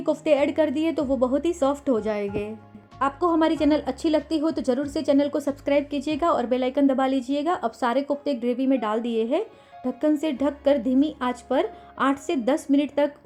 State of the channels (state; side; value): identical; both; correlation 1.00